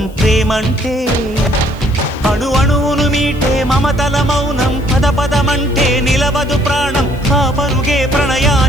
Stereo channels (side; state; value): left; noise; hiss, 27 dB below the sound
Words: ప్రేమంటే అణు అణువును మీటే మమతల మౌనం పద పదమంటే నిలవదు ప్రాణం ఆ పరుగే